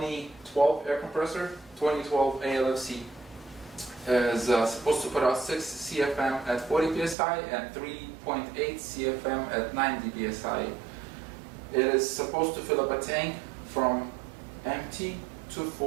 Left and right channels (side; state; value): left; drops out; at 7.2 s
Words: air compressor, 2012 ALFC, is supposed to put out 6 CFM at 40 psi and 3.8 CFM at 90 psi. It is supposed to fill up a tank from empty to